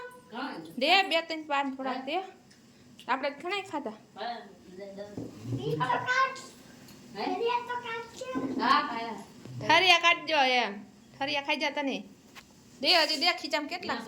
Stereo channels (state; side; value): identical; both; correlation 1.00